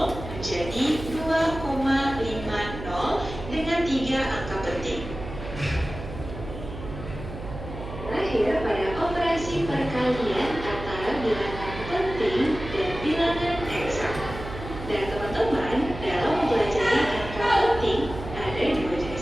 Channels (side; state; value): right; noise; hum, 10 dB below the sound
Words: menjadi 2,50 dengan 3 angka penting. Terakhir, pada operasi perkalian antara bilangan penting